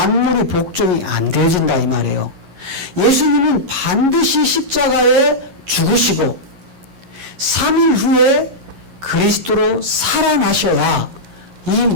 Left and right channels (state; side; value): late; left; 11 ms